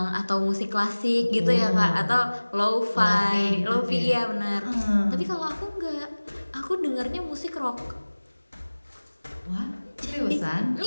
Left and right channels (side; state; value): both; inverted; correlation -1.00